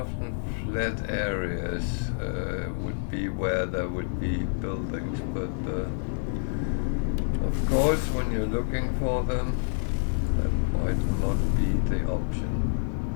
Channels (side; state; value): right; silent; digital silence